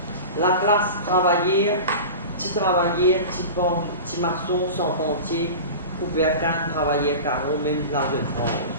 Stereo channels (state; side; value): inverted; both; correlation -0.32